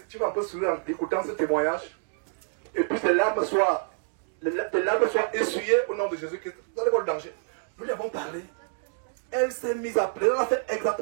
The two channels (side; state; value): left; silent; digital silence